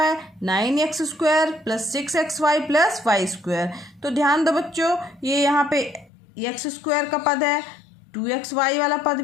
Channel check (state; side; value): drops out; right; at 6.1 s